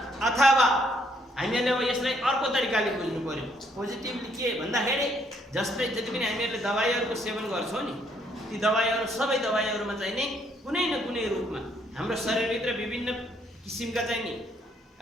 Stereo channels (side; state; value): both; normal; correlation 0.69